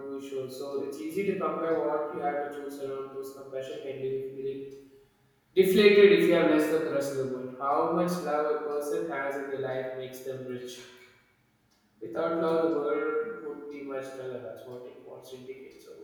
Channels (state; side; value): identical; both; correlation 1.00